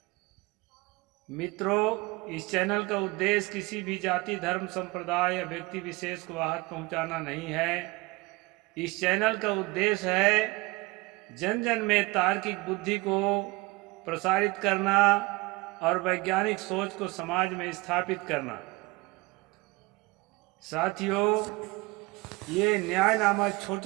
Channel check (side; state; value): left; quieter; 23.5 dB